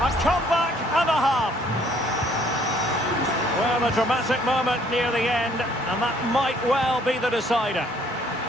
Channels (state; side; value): normal; both; correlation 0.62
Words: comeback and a half. Well, a dramatic moment near the end, and that might well be the decider.